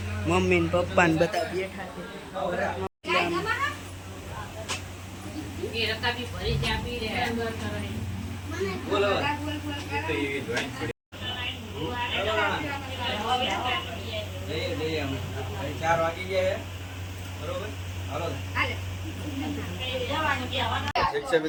મમ્મી ને પપ્પા ને બધા બેઠા છે બોલો 4 વાગી ગયા બરોબર હાલો શિક્ષક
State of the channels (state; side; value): identical; both; correlation 1.00